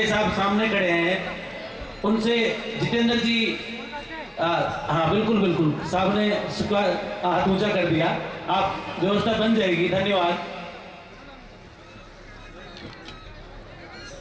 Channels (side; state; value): both; identical; correlation 1.00